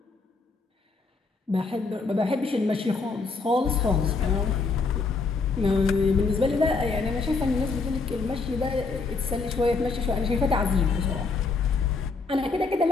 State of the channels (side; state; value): right; quieter; 4.2 dB